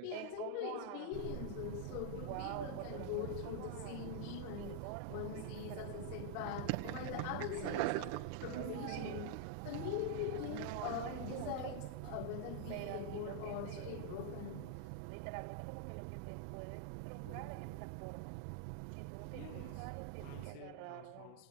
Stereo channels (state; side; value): different; both; correlation -0.01